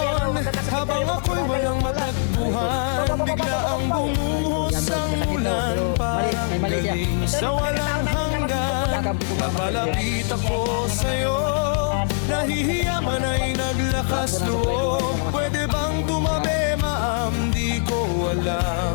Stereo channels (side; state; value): right; silent; 64 dB below the other